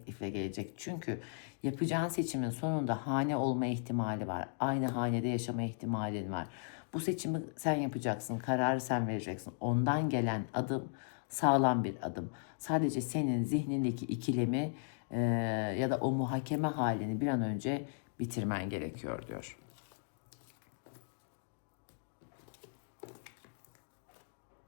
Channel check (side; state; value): right; silent; digital silence